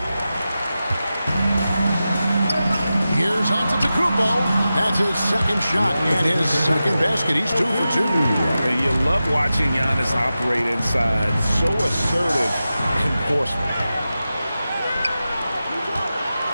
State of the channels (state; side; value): inverted; both; correlation -0.93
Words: Here's Antetokounmpo. That's his second shot and his second basket. He's 2 for 2. And you love watching Giannis operate inside. So assertive enforcement.